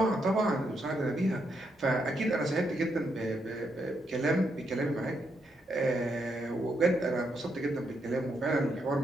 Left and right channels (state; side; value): normal; both; correlation 0.79